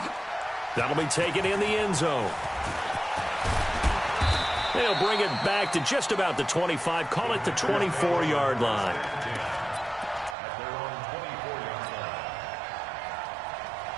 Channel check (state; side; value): drops out; left; at 10.4 s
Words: That'll be taken in the end zone. They'll bring it back to just about the 25, call it the 24-yard line.